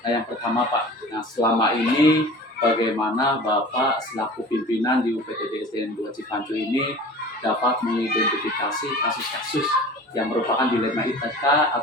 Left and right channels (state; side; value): normal; both; correlation 0.40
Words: Yang pertama Pak, nah selama ini bagaimana Bapak selaku pimpinan di UPTD SDN 2 Cipacu ini dapat mengidentifikasi kasus-kasus yang merupakan dilema etika